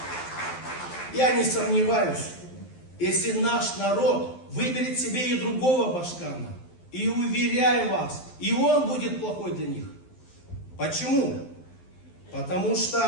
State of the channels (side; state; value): right; late; 12 ms